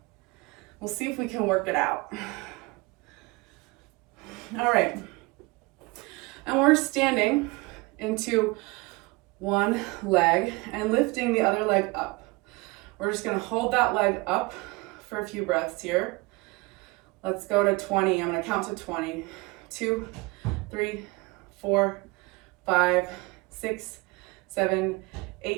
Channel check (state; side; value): quieter; left; 24.7 dB